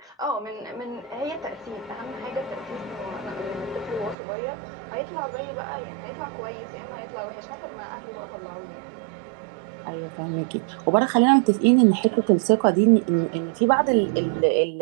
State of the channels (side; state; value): left; drops out; at 4.2 s